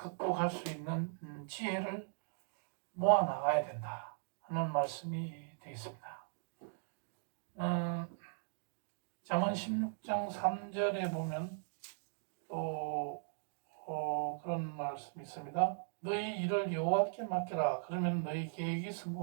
수 있는 지혜를 모아 나가야 된다 하는 말씀이 되겠습니다. 잠언 16장 3절에 보면 또 그런 말씀이 있습니다. 너희 일을 여호와께 맡겨라. 그러면 너희 계획이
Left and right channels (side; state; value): left; silent; digital silence